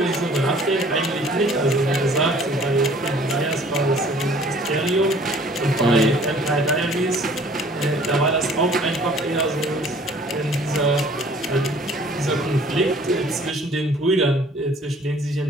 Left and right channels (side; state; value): both; normal; correlation 0.54